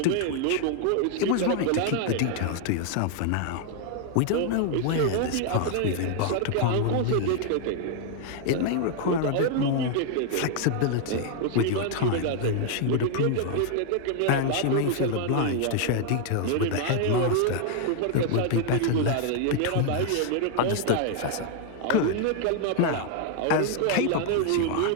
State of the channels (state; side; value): different; both; correlation 0.00